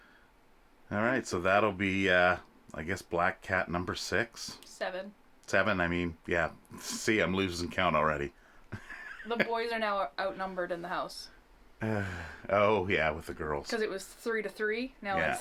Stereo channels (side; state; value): both; identical; correlation 1.00